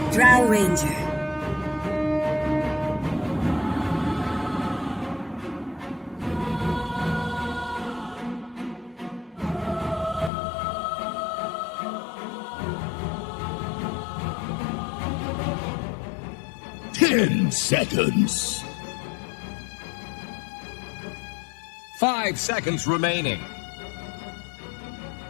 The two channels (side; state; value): right; drops out; at 10.3 s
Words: Drow Ranger. Ten seconds. 5 seconds remaining.